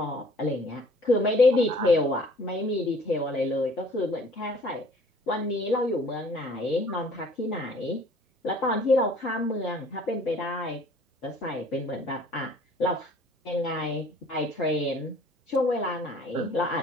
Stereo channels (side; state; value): both; normal; correlation 0.54